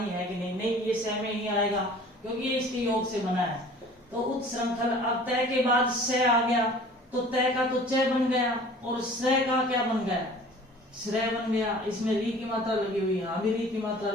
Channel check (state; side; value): normal; both; correlation 0.46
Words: है कि नहीं, नहीं ये स में ही आएगा क्योंकि ये इसके योग से बना है। तो उत्श्रंखल। अब तय के बाद स आ गया तो तय का तो च बन गया और स का क्या बन गया, श्रेय बन गया। इसमें री की मात्रा लगी हुई, यहाँ भी री की मात्रा